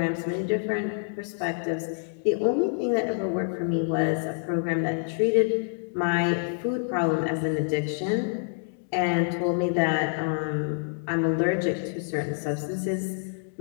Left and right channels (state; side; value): silent; right; digital silence